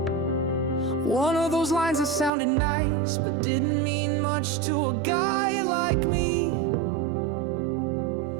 One of those lines that sounded nice but didn't mean much to a guy like me.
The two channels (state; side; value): drops out; left; at 2.3 s